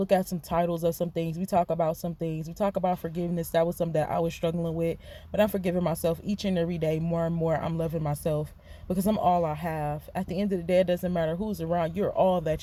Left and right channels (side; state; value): both; identical; correlation 1.00